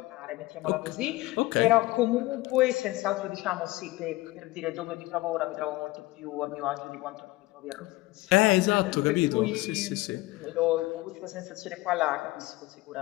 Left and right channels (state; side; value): quieter; right; 19.7 dB